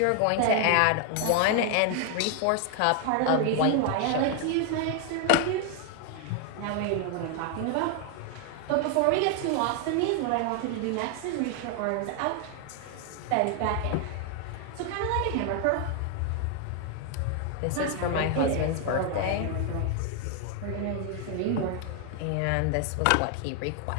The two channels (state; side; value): different; both; correlation 0.00